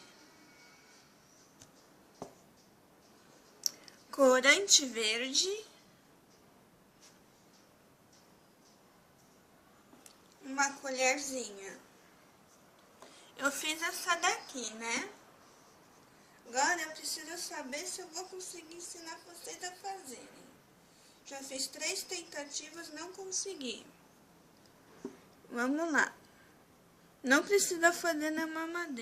Corante verde. Uma colherzinha. Eu fiz essa daqui, né? Agora eu preciso saber se eu vou conseguir ensinar vocês a fazerem. Já fiz 3 tentativas, não consegui. Vamos lá. Não precisa fazer na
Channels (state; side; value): identical; both; correlation 1.00